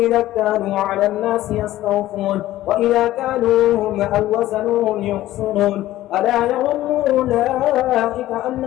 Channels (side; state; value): right; quieter; 14.9 dB